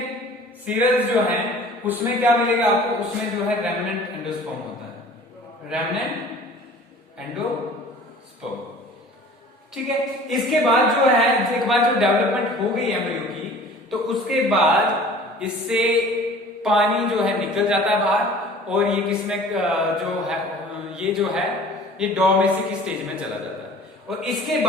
सीरियल्स जो हैं उसमें क्या मिलेगा आपको, उसमें जो है रेमनेंट एंडोस्पर्म होता है, रेमनेंट एंडोस्पर्म। ठीक है, इसके बाद जो है एक बार जो डेवलपमेंट हो गई एम्ब्रियो की, तो उसके बाद इससे पानी जो है निकल जाता है बाहर और ये किसमें जो है ये डोमेस्टिक स्टेज में चला जाता है। और इसके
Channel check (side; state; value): both; normal; correlation 0.46